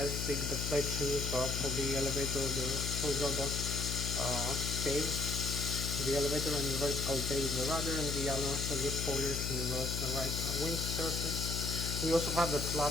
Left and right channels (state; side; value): noise; left; hum, 2 dB below the sound